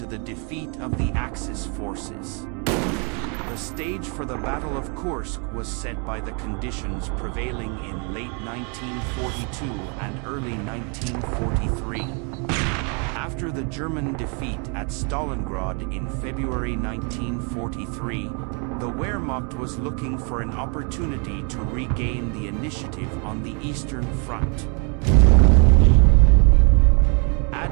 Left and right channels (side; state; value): left; quieter; 36.6 dB